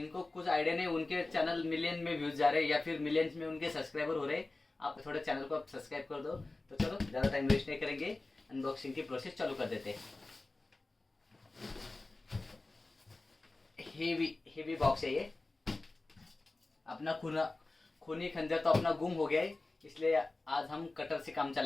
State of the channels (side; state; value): right; quieter; 3.2 dB